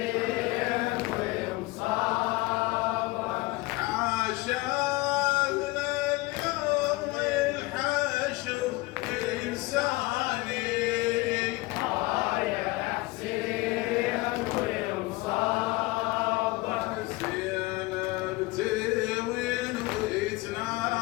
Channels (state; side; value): quieter; right; 21.5 dB